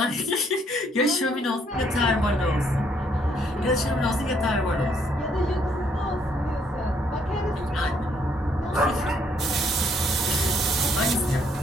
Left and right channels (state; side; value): normal; both; correlation 0.69